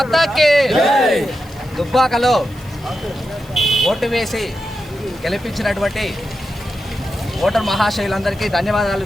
దుబ్బాకలో ఓటు వేసి గెలిపించినటువంటి ఓటర్ మహాశయులందరికీ ధన్యవాదాలు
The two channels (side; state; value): left; noise; hiss, 26 dB below the sound